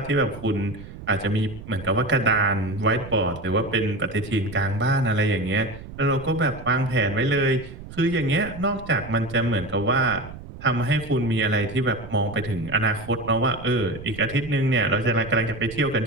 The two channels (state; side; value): noise; right; rumble, 14 dB below the sound